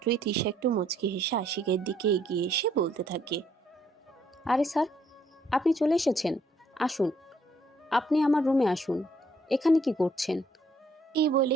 তিশা একটু মুচকি হেসে আশিকের দিকে এগিয়ে এসে বলতে থাকে, আরে স্যার, আপনি চলে এসেছেন। আসুন, আপনি আমার রুমে আসুন। এখানে কি করছেন? এই বলে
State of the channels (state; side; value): normal; both; correlation 0.67